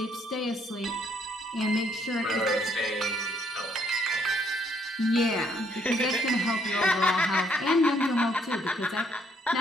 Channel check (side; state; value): both; normal; correlation 0.69